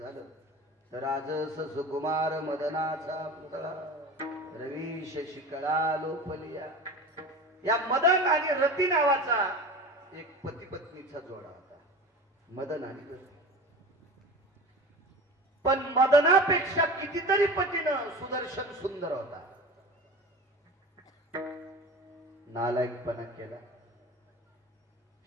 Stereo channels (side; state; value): both; normal; correlation 0.33